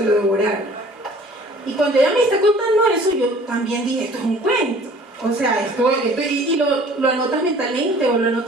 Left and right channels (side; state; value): both; normal; correlation 0.51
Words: lo devoraron. Y cuando ella me está contando eso, yo también dije, esto es un cuento. O sea, y lo anotas mentalmente o lo